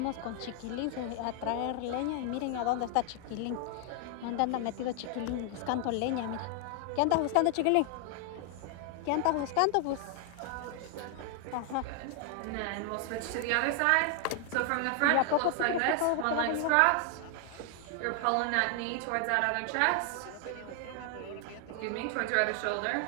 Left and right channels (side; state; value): both; different; correlation 0.00